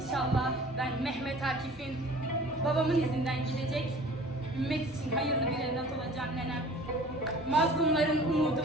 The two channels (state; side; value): normal; both; correlation 0.46